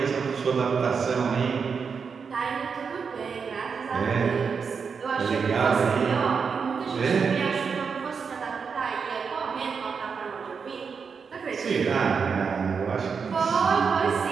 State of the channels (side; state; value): left; quieter; 5.8 dB